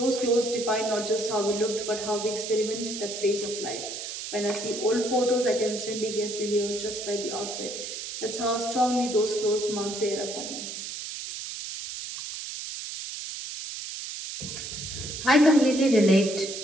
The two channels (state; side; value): noise; right; hiss, 7 dB below the sound